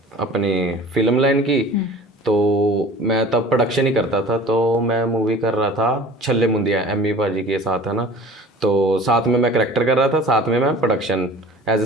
अपनी फिल्म लाइन की, तो मैं तब प्रोडक्शन ही करता था। तो मैं मूवी कर रहा था छल्ले मुंदिया, एमी पाजी के साथ, है ना। तो साथ में मैं करैक्टर कर रहा था, साथ में मैं production as a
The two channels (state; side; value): normal; both; correlation 0.43